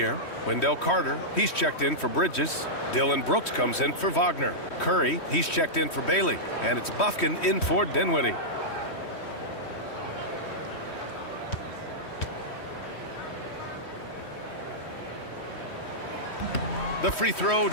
Wendell Carter, he's checked in for Bridges. Dylan Brooks comes in for Wagner. Curry, he's checked in for Bailey. And it's Bufkin in for Dinwiddie. The free throw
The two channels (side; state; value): right; late; 3.1 ms